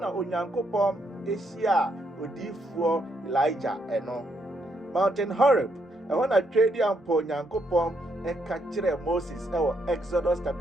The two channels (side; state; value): both; normal; correlation 0.75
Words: Onyankopɔn ehyia odiifoɔ Elijah ɛno Mountain Horeb ɛhɔ na twedi ampo Onyankopɔn ɛka kyerɛ Moses ɛwɔ Exodus